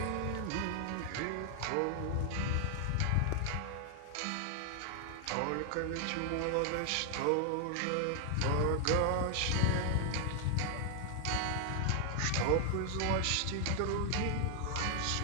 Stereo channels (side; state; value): both; different; correlation 0.00